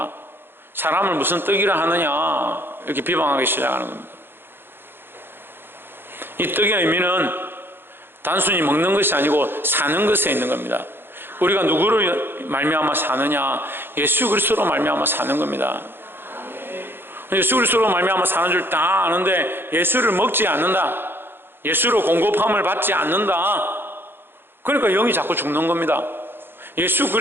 사람을 무슨 떡이라 하느냐 이렇게 비방하기 시작하는 겁니다. 이 떡의 의미는 단순히 먹는 것이 아니고 사는 것에 있는 겁니다. 우리가 누구를 말미암아 사느냐? 예수 그리스도로 말미암아 사는 겁니다. 예수 그리스도로 말미암아 사는 줄 다 아는데 예수를 먹지 않는다, 예수로 공급함을 받지 않는다, 그러니까 영이 자꾸 죽는 겁니다. 예수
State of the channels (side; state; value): left; late; 0.10 ms